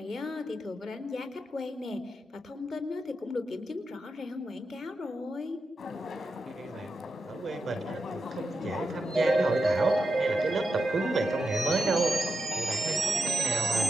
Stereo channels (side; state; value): both; normal; correlation 0.87